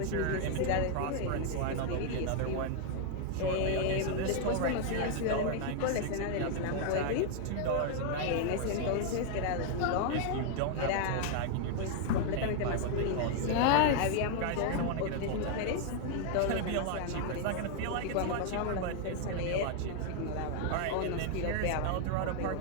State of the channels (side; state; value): both; different; correlation 0.00